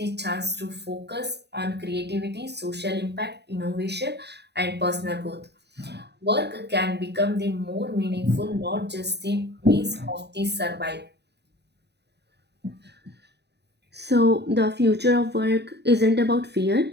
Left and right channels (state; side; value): late; left; 0.49 ms